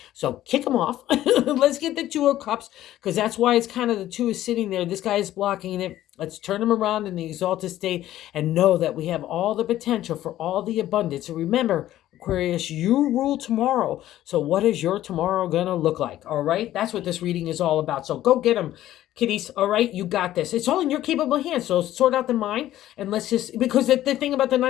So kick him off. Let's get the Two of Cups, because that's why it's kind of the two is sitting there. This guy is blocking it. Let's turn him around in the exalted state and know that we have all the potential for all the abundance. So remember, Aquarius, you rule tomorrow. So what is your tomorrow going to look like? All right. That's what this reading is all about. So go get them, kiddies. All right. You got this. It's all in your capable hands. So sort out the mind, and let's just, because the thing about the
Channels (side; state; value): right; quieter; 13.6 dB